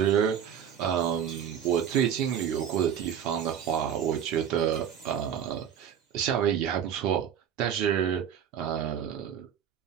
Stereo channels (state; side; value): quieter; left; 8.9 dB